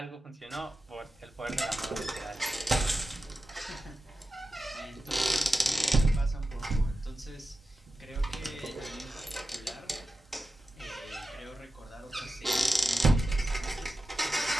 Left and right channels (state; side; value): normal; both; correlation 0.93